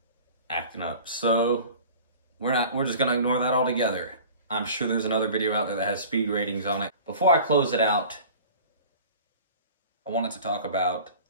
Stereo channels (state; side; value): inverted; both; correlation -0.42